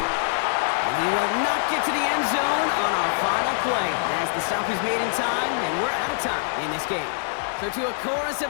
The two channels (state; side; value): silent; right; 62 dB below the other